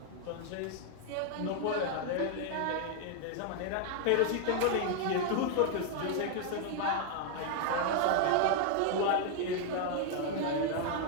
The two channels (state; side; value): different; both; correlation 0.00